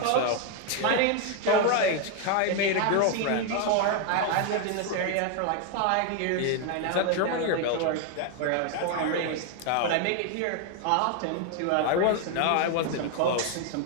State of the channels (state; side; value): different; both; correlation 0.01